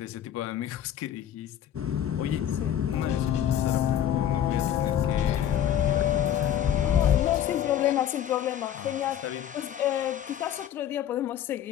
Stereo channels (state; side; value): quieter; right; 10.4 dB